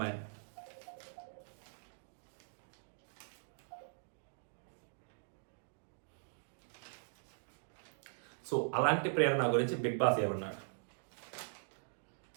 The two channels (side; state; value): left; silent; digital silence